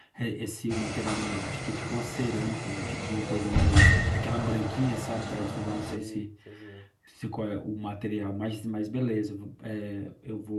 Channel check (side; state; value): both; identical; correlation 1.00